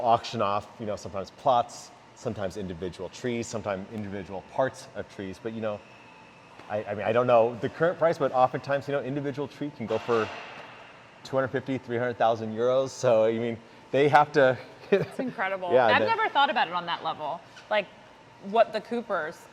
off sometimes plots, sometimes individual trees, sometimes individual parts of trees, but I mean, I don't know the current price, but oftentimes individual tree can go for 250, 300,000 euros. So I mean, they have to. It's incredible. Yeah, I've never thought about it on that level, like what the Coopers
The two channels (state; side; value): identical; both; correlation 1.00